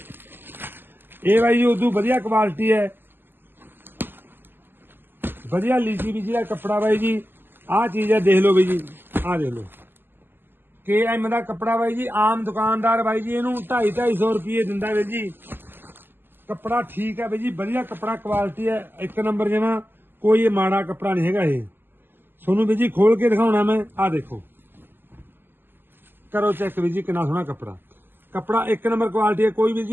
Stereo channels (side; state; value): left; late; 0.096 ms